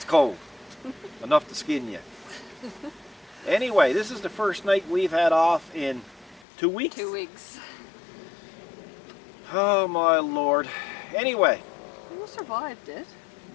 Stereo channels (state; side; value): drops out; right; at 6.5 s